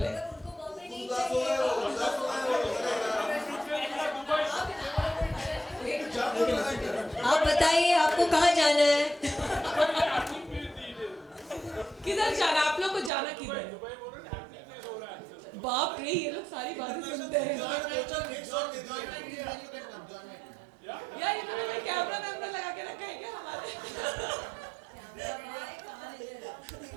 आप बताइए आपको कहाँ जाना है? किधर जाना आप लोग को जाना किधर? बाप रे ये लोग सारी बातें सुनते हैं। यार इन्होंने कैमरा लगा के रखा है क्या हमारे?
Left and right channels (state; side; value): drops out; left; at 13.1 s